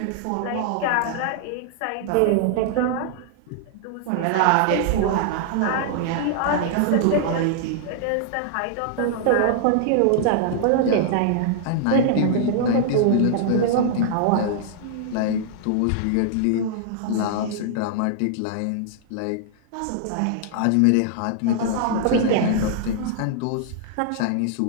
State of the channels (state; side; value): different; both; correlation -0.01